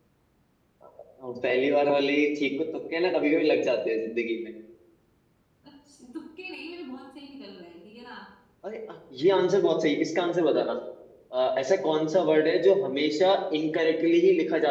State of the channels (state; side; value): identical; both; correlation 1.00